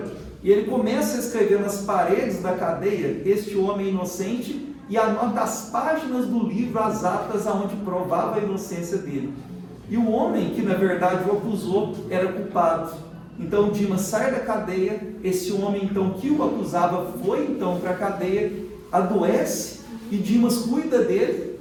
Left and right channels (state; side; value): identical; both; correlation 1.00